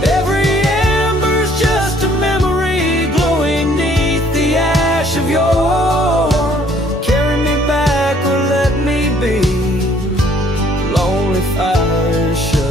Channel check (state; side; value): normal; both; correlation 0.61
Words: Every ember's just a memory glowing neath the ash of yore. Carry me back or let me be. Lonely fire,